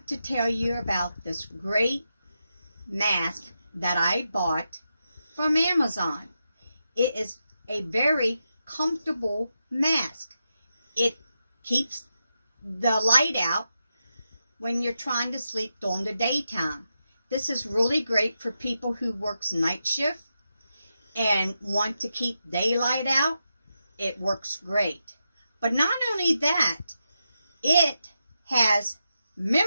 to tell you about this great mask that I bought from Amazon. It is a very comfortable mask. It keeps the light out when you're trying to sleep during the daytime. This is really great for people who works night shift and want to keep daylight out. It works great. But not only that, it has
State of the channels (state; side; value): inverted; both; correlation -0.87